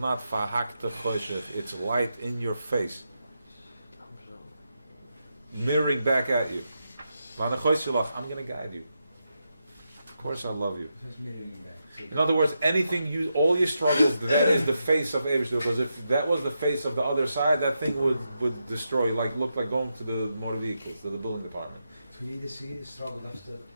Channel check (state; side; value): inverted; both; correlation -0.85